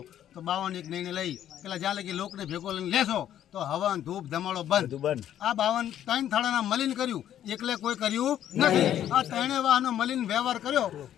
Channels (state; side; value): quieter; right; 11.0 dB